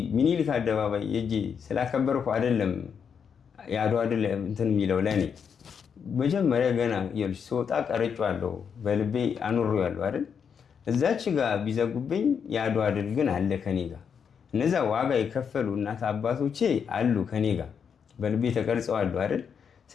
ምኒልክ አደባባይ እጂ ስላከበርኩ አይደለም የአድዋ ድል እንትን የሚለው ለኔ መጀመሪያ ገና ይልሽ ስወጣ ቀርጬዋለሁ፣ በልቤ አኑሬዋለሁ አይደል? እዛች ጋር ቢዘጉብኝ የአድዋ ድል ግን አለ ከኔ ጋር። እነዛ ዋጋ የከፈሉ እናት አባቶቼ አሉ ከኔ ጋር በልቤ ተቀርጸዋል አይደል?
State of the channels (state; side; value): quieter; right; 7.0 dB